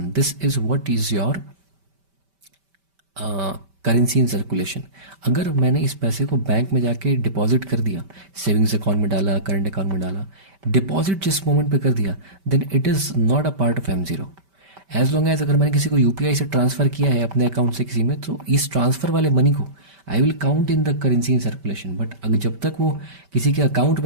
this is what is your currency in circulation. अगर मैंने इस पैसे को बैंक में जाके डिपॉजिट कर दिया, सेविंग्स अकाउंट में डाला, करंट अकाउंट में डाला, डिपॉजिट जिस मोमेंट पे कर दिया, then it is not a part of M0. As long as अगर मैंने किसी को यूपीआई से ट्रांसफर किया है अपने अकाउंट से किसी में, तो इस ट्रांसफर वाले मनी को I will count in the currency in circulation. But अगर जब तक वो किसी के अकाउंट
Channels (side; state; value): left; late; 5.1 ms